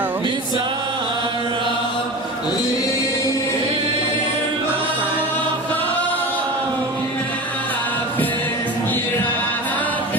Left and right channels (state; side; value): normal; both; correlation 0.30